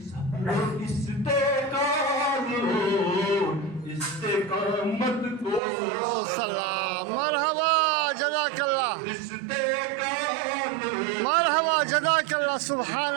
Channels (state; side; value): drops out; left; at 5.6 s